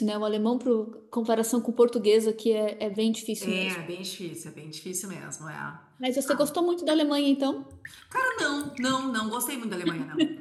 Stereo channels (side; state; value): both; identical; correlation 1.00